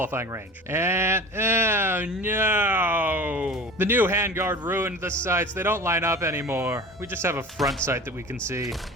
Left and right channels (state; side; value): normal; both; correlation 0.36